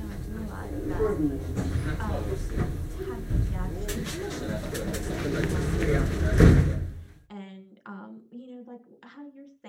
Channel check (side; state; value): both; identical; correlation 1.00